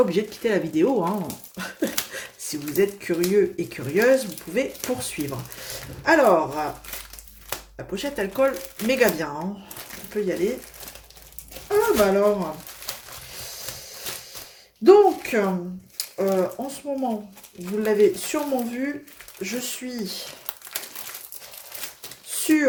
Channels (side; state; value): both; identical; correlation 1.00